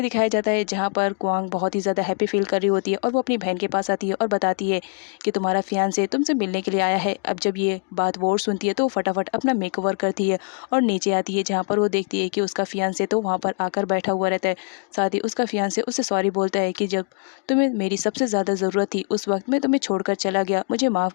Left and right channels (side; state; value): right; quieter; 37.7 dB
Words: दिखाया जाता है जहाँ पर क्वांग बहुत ही ज़्यादा हैप्पी फील कर रही होती है और वो अपनी बहन के पास आती है और बताती है कि तुम्हारा फियांसे तुमसे मिलने के लिए आया है। अब जब ये बात वोर सुनती है तो वो फटाफट अपना मेकओवर करती है और नीचे आती है जहाँ पर वो देखती है कि उसका फियांसे तो वहाँ पर आकर बैठा हुआ रहता है। साथ ही उसका फियांसे उससे सॉरी बोलता है कि जब तुम्हें मेरी सबसे ज़्यादा ज़रूरत थी उस वक्त मैं तुम्हें छोड़कर चला गया, मुझे माफ़